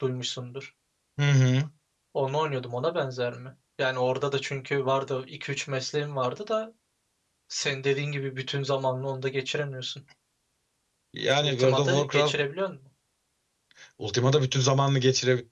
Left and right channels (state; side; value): identical; both; correlation 1.00